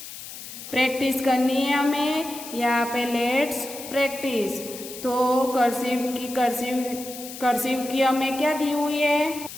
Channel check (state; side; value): noise; left; hiss, 12 dB below the sound